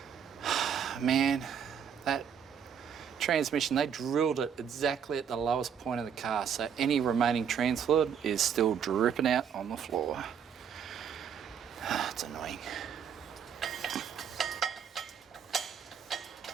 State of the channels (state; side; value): quieter; left; 7.8 dB